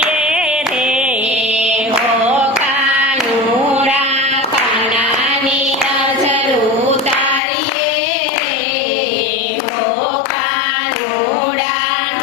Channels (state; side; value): drops out; right; at 7.4 s